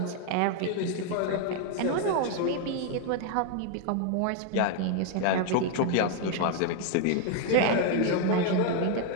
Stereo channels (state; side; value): different; both; correlation 0.00